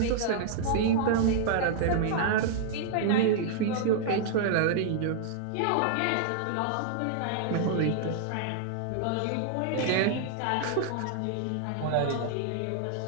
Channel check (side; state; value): both; different; correlation -0.01